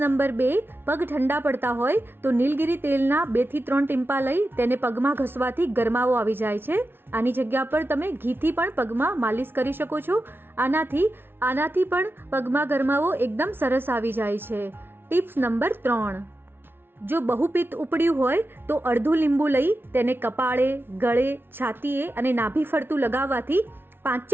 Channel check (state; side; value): late; left; 0.11 ms